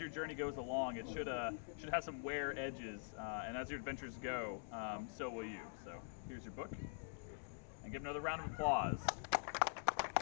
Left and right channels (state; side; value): silent; right; digital silence